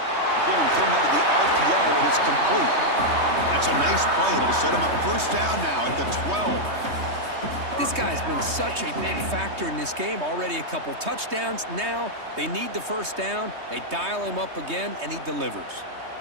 thrown out of the RPO, and it's complete. That's a nice play. It'll set him up 1st down now at the 12. This guy's been such a big factor in this game. Already a couple touchdowns. Now they need the 1st down. They dial him up again, and he delivers.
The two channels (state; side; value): late; left; 3.2 ms